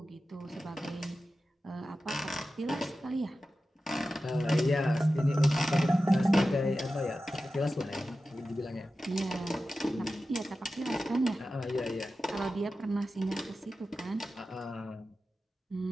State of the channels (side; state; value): both; normal; correlation 0.93